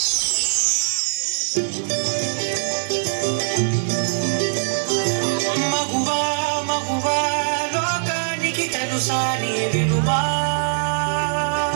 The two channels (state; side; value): silent; left; digital silence